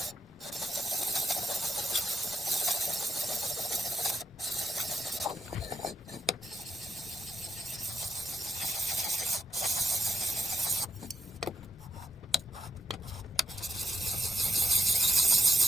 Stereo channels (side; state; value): both; normal; correlation 0.84